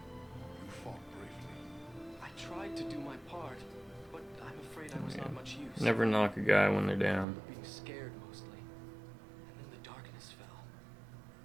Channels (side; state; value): left; drops out; at 7.2 s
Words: You fought bravely. I tried to do my part, but I'm afraid I was not much use. Never knock a guy when they're down. Being scared mostly. And then the darkness fell.